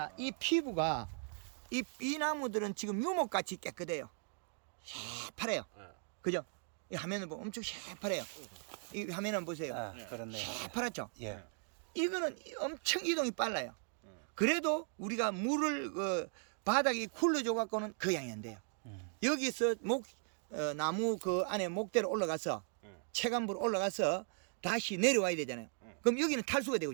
이 피부가 이 나무들은 지금 유목같이 깨끗해요. 새파래요. 그죠? 이 화면을 보면 엄청 새파래요. 이 화면을 보세요. 그렇네. 새파랗죠? 예. 이거는 엄청 이동이 빨라요. 그래도 우리가 물을 바닥에 굴러줘 갖고는 그 양이 안 돼요. 여기서 나무 그 안에 목대로 올라가서 체감부로 올라가서 다시 내려와야 되잖아요. 그럼 여기는 탈수가 되고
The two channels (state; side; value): silent; left; 52 dB below the other